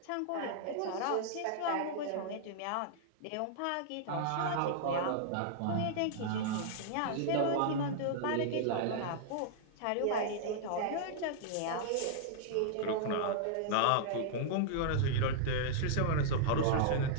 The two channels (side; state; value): both; different; correlation -0.01